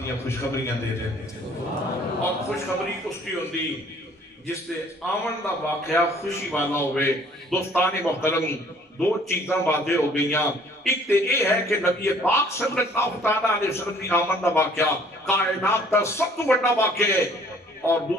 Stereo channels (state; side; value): normal; both; correlation 0.57